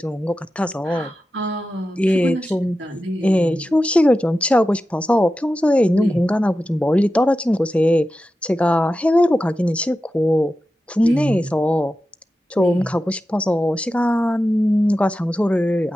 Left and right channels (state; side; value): normal; both; correlation 0.92